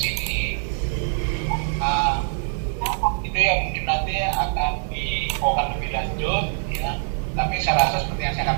itu yang mungkin nanti akan dibawakan lebih lanjut ya. Tapi saya rasa seperti yang saya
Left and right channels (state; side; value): silent; left; digital silence